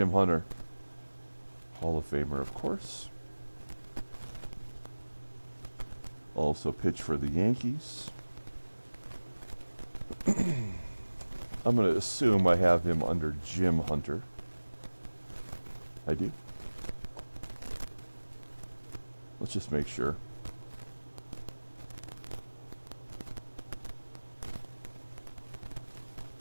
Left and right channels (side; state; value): both; inverted; correlation -1.00